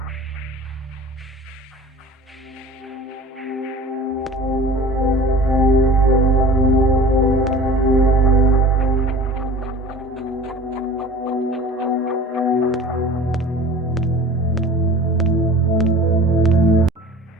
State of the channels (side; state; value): both; normal; correlation 0.42